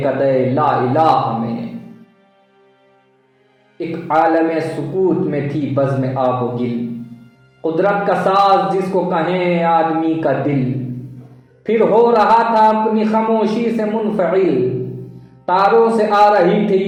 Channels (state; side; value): identical; both; correlation 1.00